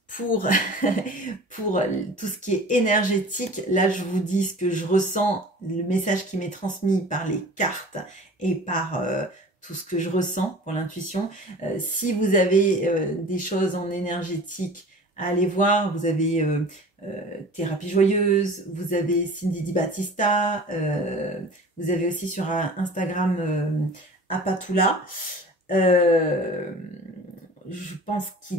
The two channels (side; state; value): both; normal; correlation 0.42